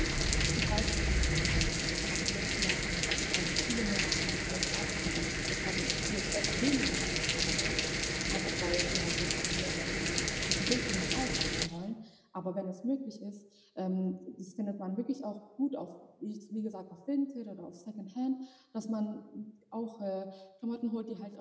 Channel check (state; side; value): identical; both; correlation 1.00